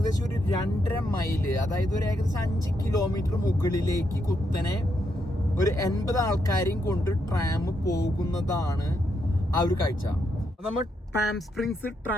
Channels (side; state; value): both; normal; correlation 0.79